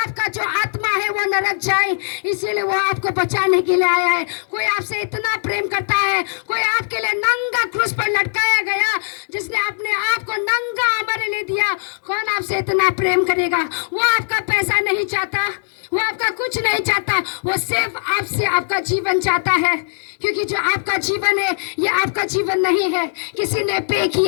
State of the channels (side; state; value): right; silent; digital silence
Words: जो आत्मा है वो नरक जाए, इसीलिए वो आपको बचाने के लिए आया है। कोई आपसे इतना प्रेम करता है, कोई आपके लिए नंगा क्रूस पर लटकाया गया, जिसने अपने आप को नंगा हमारे लिए दिया। कौन आपसे इतना प्रेम करेगा? वो आपका पैसा नहीं चाहता, वो आपका कुछ नहीं चाहता, वो सिर्फ आपसे आपका जीवन चाहता है। क्योंकि जो आपका जीवन है ये आपका जीवन नहीं है, किसी ने पे